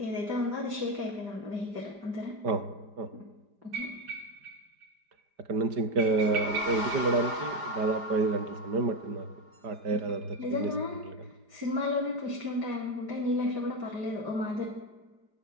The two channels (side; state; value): left; late; 4.9 ms